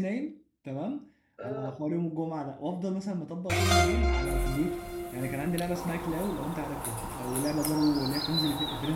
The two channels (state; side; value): identical; both; correlation 1.00